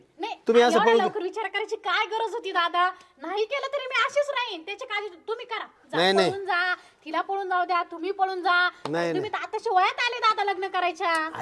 नाही तुम्ही असं एवढ्या पळून लवकर विचार करायची काय गरज होती दादा? नाही केलं तरी मी अशीच राहीन. त्याची काळजी तुम्ही करा. जा, नाही, नाही. पळून जा. तिला पळून जाऊ द्या. तुम्ही पळून जा. नाही. तुम्ही तर आताशी वयात आले दादा लग्न करायच्या.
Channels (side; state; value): both; identical; correlation 1.00